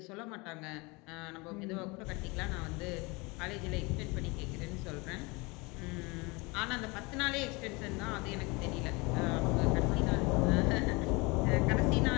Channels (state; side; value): quieter; right; 26.4 dB